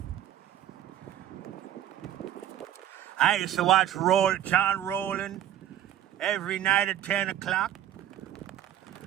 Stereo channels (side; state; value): left; quieter; 11.8 dB